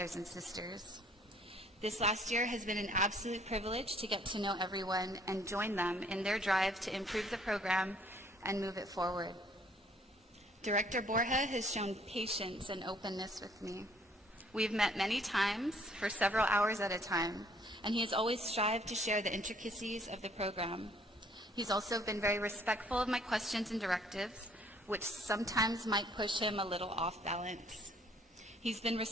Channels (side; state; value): both; normal; correlation 0.61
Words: and sisters. This last year has been an absolute privilege to get to know everyone and join them in their drive to improve the program and move it forward. Director Borja has shown patience and openness with me. We've met many times for several hours at a time, and he has always strived to share the intricacies of the program. He's also been very respectful of my questions and directives, which sometimes might push him a little off balance. He's been